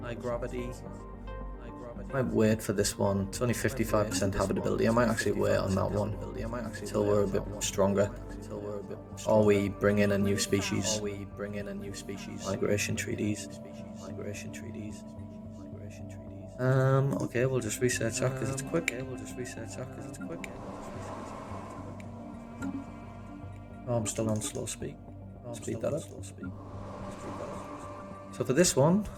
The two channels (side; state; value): both; identical; correlation 1.00